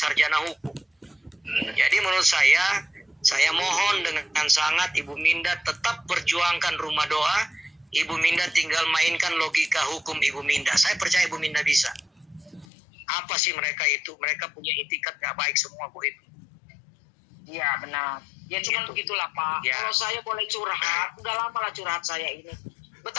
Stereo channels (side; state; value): right; drops out; at 12.7 s